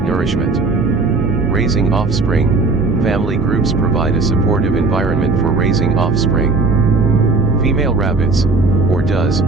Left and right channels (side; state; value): left; quieter; 3.7 dB